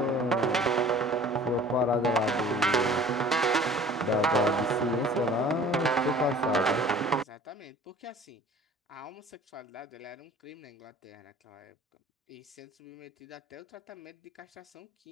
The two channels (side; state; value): both; normal; correlation 0.48